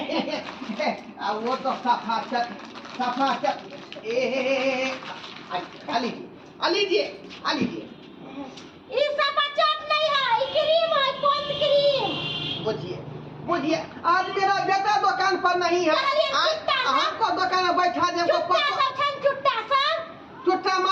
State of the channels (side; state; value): both; identical; correlation 1.00